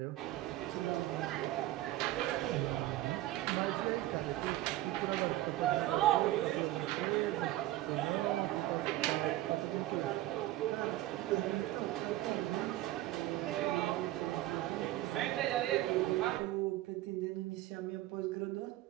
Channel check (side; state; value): left; quieter; 15.8 dB